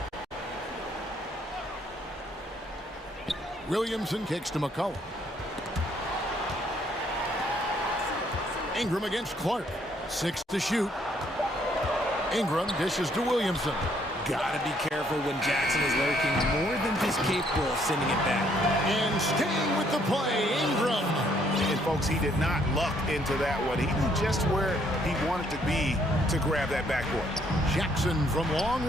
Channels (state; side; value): normal; both; correlation 0.67